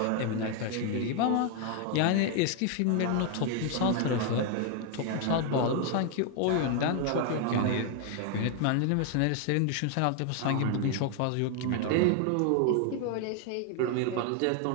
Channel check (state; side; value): different; both; correlation 0.01